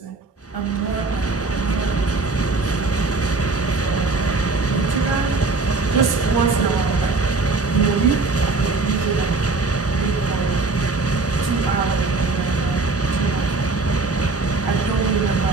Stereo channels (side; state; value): left; quieter; 3.6 dB